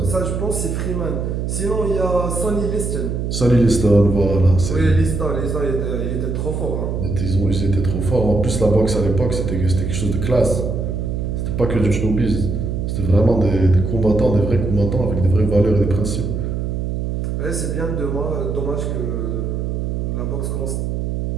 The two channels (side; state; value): right; noise; hum, 2 dB below the sound